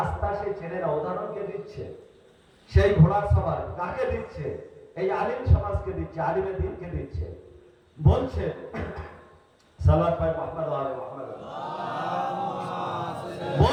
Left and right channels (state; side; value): identical; both; correlation 1.00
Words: সে চেনে না। উদাহরণকে দিচ্ছে সেই ঘোড়ার সবার কাকে দিচ্ছে? এই আলিম সমাজকে দিচ্ছে, আলিমে দিনকে দিচ্ছে। বলছে সালাত ভাই মুহাম্মদ আলে মুহাম্মদ